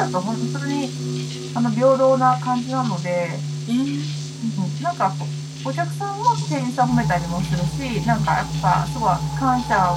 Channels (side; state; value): both; identical; correlation 1.00